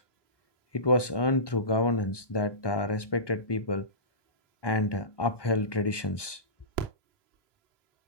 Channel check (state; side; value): late; right; 1.2 ms